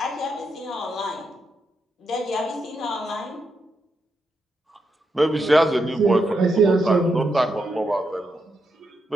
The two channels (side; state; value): both; normal; correlation 0.83